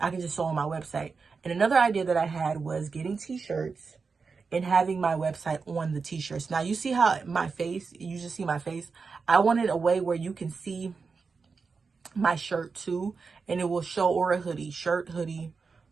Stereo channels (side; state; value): left; quieter; 4.9 dB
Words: can just show on my website. And another idea that I had was getting t-shirts and having my website on the t-shirts. Now, you see how my face, you just see my face. I wanted a way where you can see my shirt too, and it will show, or a hoodie, shirt, hoodie,